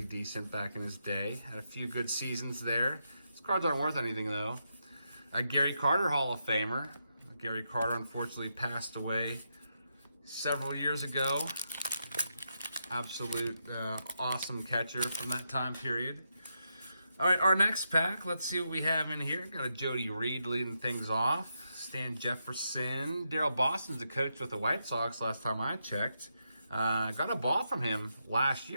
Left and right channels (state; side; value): inverted; both; correlation -0.83